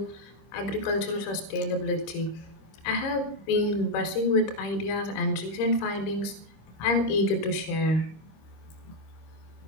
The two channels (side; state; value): right; late; 26 ms